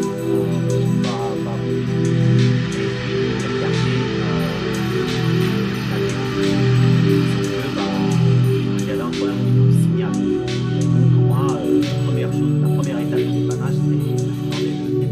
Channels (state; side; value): identical; both; correlation 1.00